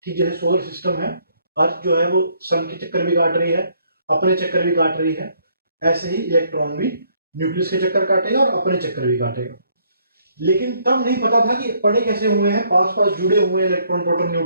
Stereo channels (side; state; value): both; inverted; correlation -0.67